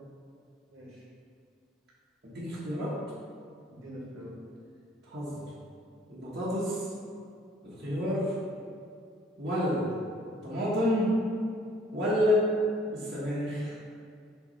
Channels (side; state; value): both; normal; correlation 0.58